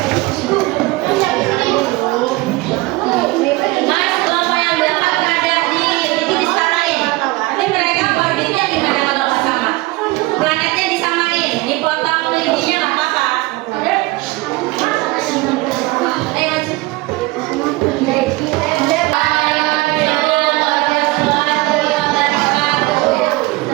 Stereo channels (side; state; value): left; quieter; 21.3 dB